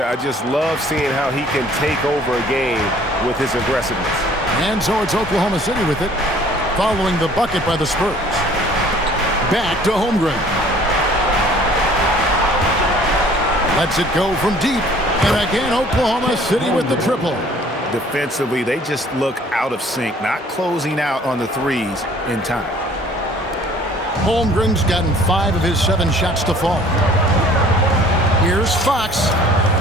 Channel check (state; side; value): normal; both; correlation 0.54